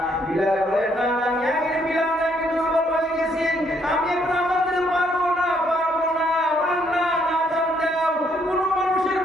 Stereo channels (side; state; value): both; normal; correlation 0.70